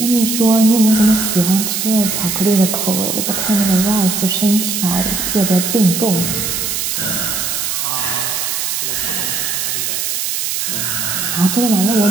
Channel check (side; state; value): right; noise; hiss, 1 dB below the sound